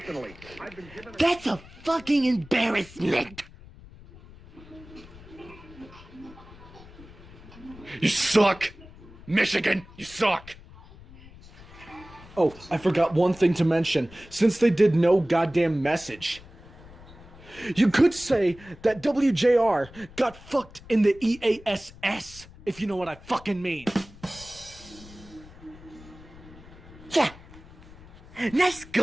I've been given That's a fucking embarrassment. You suck. Michigan, you suck. Oh, I forgot one thing to mention. Since they did no goddamn message, you could say that WJR got fucked in the EASS, if you know what I fucking mean. Yeah. Nice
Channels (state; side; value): noise; left; rumble, 20 dB below the sound